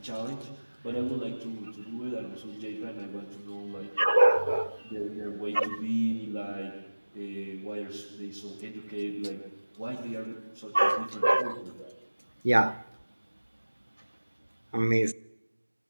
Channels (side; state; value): both; inverted; correlation -1.00